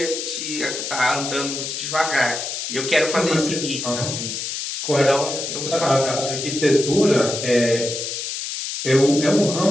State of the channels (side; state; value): left; noise; hiss, 5 dB below the sound